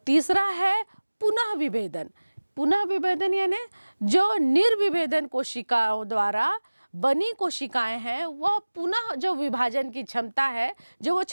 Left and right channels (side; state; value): both; inverted; correlation -1.00